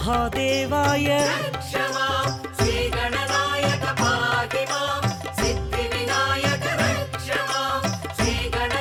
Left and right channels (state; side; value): identical; both; correlation 1.00